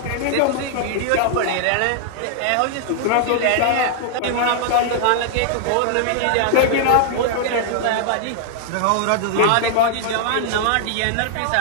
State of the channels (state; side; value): different; both; correlation -0.01